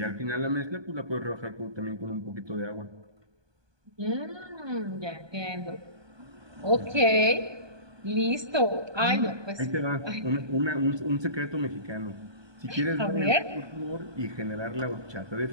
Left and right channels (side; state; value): left; late; 1.2 ms